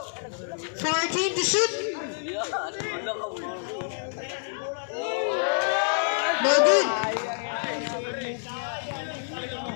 14 to shoot. No good.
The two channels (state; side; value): silent; right; digital silence